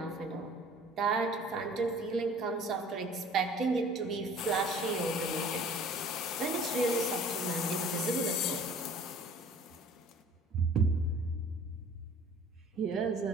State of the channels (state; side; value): normal; both; correlation 0.49